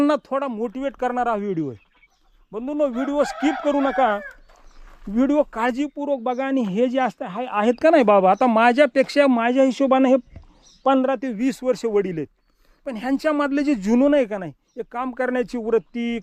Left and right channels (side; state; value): both; identical; correlation 1.00